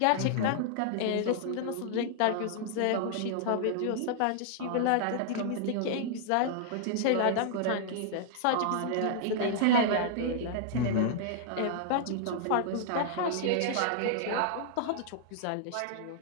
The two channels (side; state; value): both; different; correlation -0.01